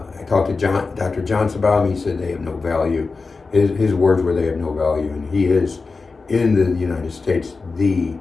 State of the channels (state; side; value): quieter; right; 4.2 dB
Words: talked to Dr. Johnson about them. He said they have no value. His words were they have no value, and he is, in the United States, the